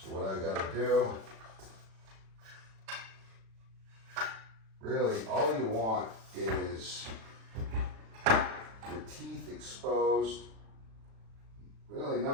what I gotta do, really all you want is your teeth exposed, really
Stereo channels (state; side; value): late; left; 36 ms